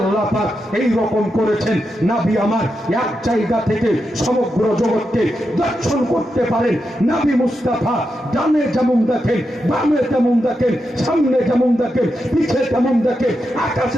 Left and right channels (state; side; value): normal; both; correlation 0.86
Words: পাক এই রকম করেছেন, নবী আমার এক জায়গা থেকে সমগ্র জগৎকে দর্শন করতে পারেন। নবী মুস্তাফা ডানে যেমন দেখেন, বামে তেমন দেখেন, সামনে যেমন দেখেন, পিছে তেমন দেখেন,